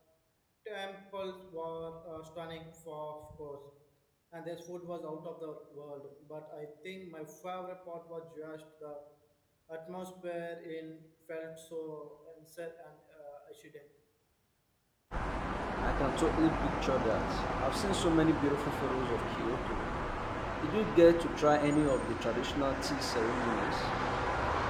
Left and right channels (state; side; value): identical; both; correlation 1.00